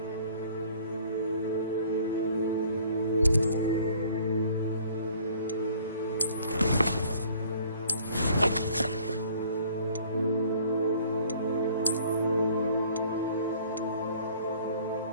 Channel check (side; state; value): both; inverted; correlation -0.56